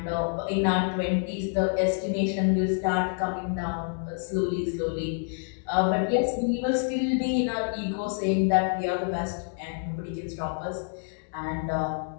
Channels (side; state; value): right; silent; 60 dB below the other